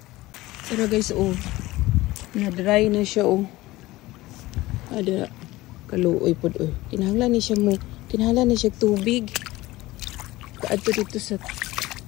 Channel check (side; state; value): right; quieter; 18.5 dB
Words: Pero guys oh, na-dry na siya oh. Ada kaluoy pod oh. Kinahanglan ni siya mo, kinahanglan ni siya tubig. Kaadto dito sa